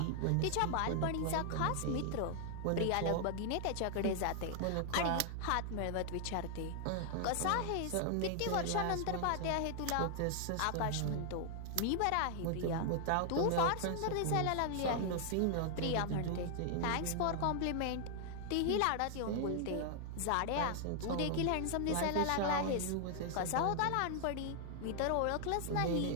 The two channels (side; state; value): both; different; correlation 0.00